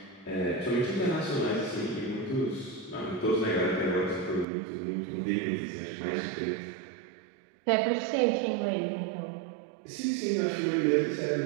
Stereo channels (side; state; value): left; drops out; at 4.5 s